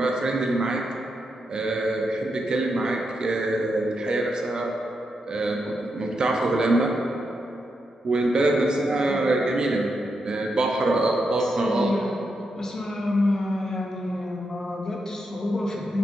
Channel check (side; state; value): both; normal; correlation 0.84